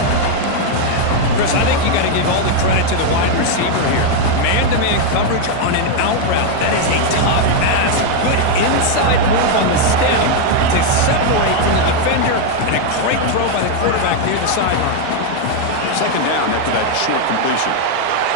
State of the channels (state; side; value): different; both; correlation 0.01